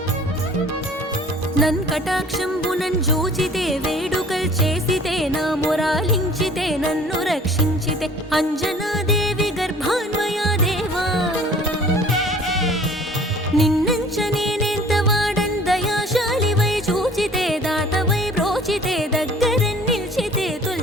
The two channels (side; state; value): both; normal; correlation 0.50